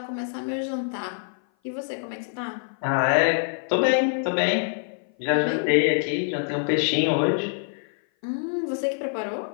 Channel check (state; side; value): silent; right; 56 dB below the other